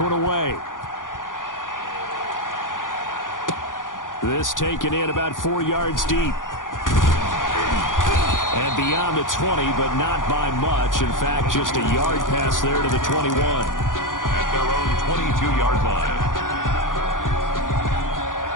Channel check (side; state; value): right; late; 0.89 ms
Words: away. This taken in about 4 yards deep. And beyond the 20, but not by much. In fact, just a yard pass there to the 21. At their own 22-yard line.